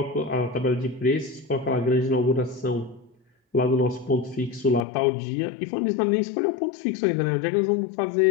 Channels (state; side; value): drops out; right; at 4.9 s